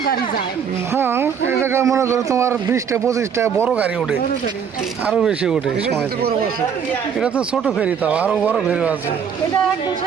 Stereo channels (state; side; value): quieter; left; 7.3 dB